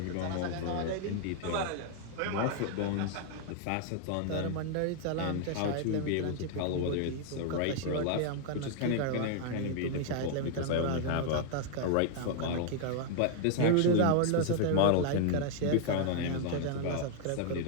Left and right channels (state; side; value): different; both; correlation 0.00